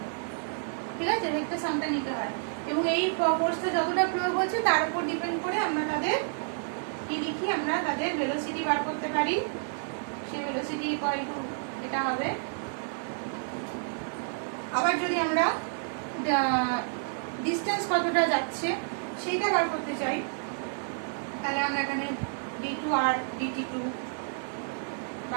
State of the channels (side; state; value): left; silent; digital silence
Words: ঠিক আছে, ভেক্টর সামটা নিতে হয় এবং এই ফোর্সটা যতটা প্রয়োগ হচ্ছে তার উপর ডিপেন্ড করে আমরা তাদের কি লিখি, আমরা তাদের ভেলোসিটি বার করতে পারি। সেই ভেলোসিটি ইকুয়াল টু এটা হবে। আবার যদি আমরা ডিস্টেন্স কতটা যাচ্ছে সেইটা বার করতে চাই, তাহলে আমরা এখানে d2r dt2